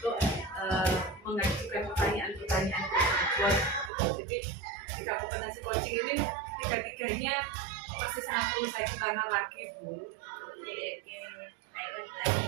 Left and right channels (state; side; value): drops out; left; at 3.9 s